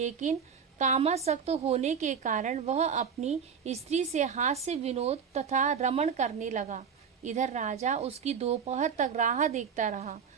कामासक्त होने के कारण वह अपनी स्त्री से हास्य विनोद तथा रमण करने लगा। इधर राजा उसकी दोपहर तक राह देखता रहा।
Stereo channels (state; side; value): quieter; left; 6.8 dB